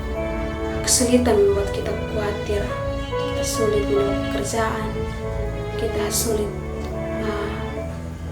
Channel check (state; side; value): identical; both; correlation 1.00